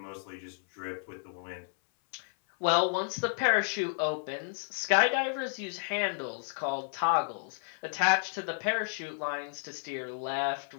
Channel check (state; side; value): silent; right; 57 dB below the other